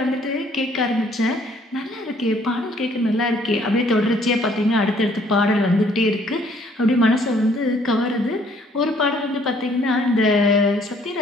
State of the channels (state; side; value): normal; both; correlation 0.62